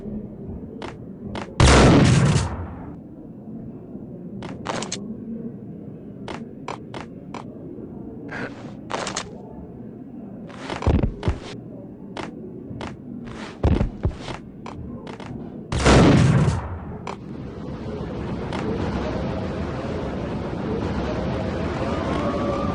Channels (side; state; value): both; identical; correlation 1.00